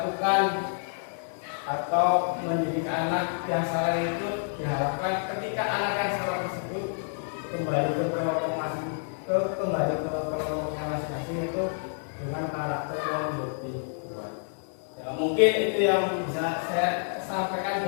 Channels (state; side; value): silent; right; 59 dB below the other